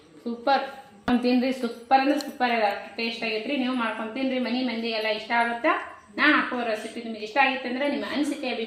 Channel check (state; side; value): identical; both; correlation 1.00